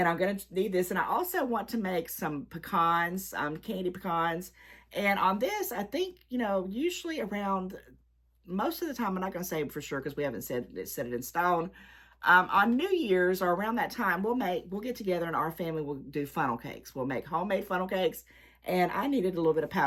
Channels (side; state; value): both; identical; correlation 1.00